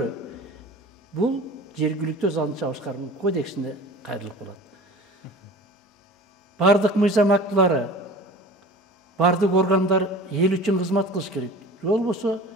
бул жергиликтүү өз алдынча башкаруу кодексине кайрылып калат. Бардык мыйзам актылары, бардык органдар эл үчүн кызмат кылыш керек. Же болбосо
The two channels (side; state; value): both; normal; correlation 0.40